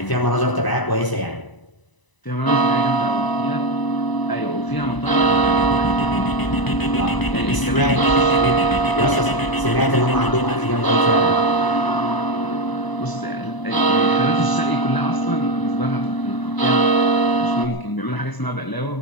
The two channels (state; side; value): late; right; 1.0 ms